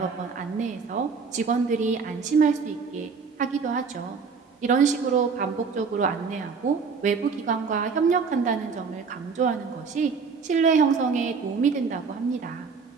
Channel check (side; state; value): left; quieter; 5.3 dB